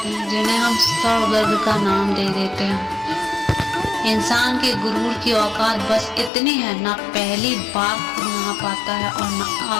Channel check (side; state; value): right; drops out; at 6.3 s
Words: हैं जिन्हें हम सर दर्द का नाम दे देते हैं। इंसान के गुरूर की औकात बस इतनी है, ना पहली बार खुद नहा पाता है और ना